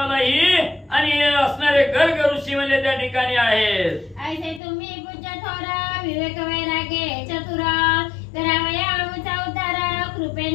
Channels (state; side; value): drops out; right; at 4.6 s